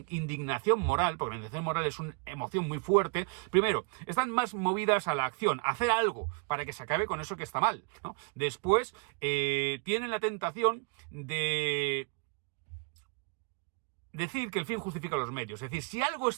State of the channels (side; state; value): left; quieter; 35.1 dB